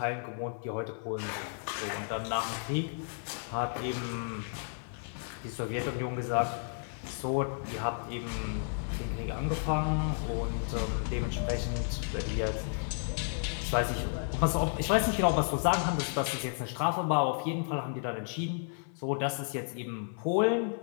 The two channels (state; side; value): silent; right; 56 dB below the other